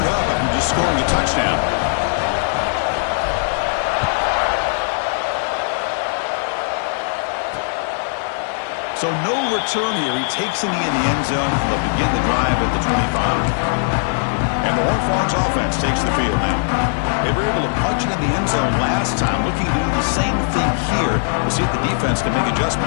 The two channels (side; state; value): right; silent; digital silence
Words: up after just scoring a touchdown. So no return here. He takes in the end zone. They'll begin the drive at the 25. And the Horned Frogs offense takes the field now. They were able to punch it in the end zone last time. Looking to do the same thing here. We'll see if the defense can make